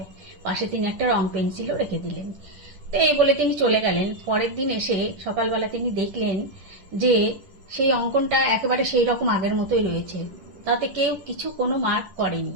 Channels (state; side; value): late; left; 10 ms